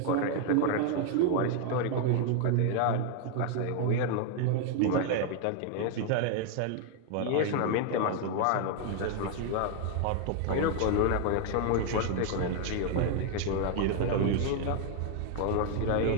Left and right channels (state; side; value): different; both; correlation 0.00